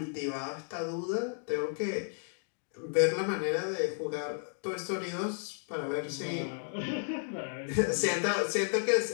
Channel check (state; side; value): silent; right; digital silence